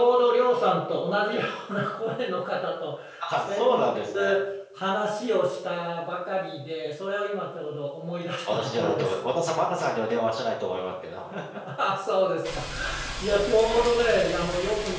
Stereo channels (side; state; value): both; identical; correlation 1.00